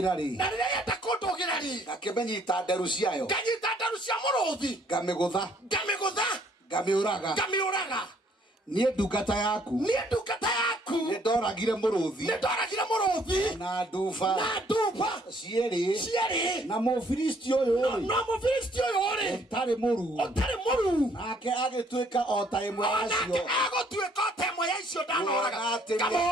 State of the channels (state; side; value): normal; both; correlation 0.63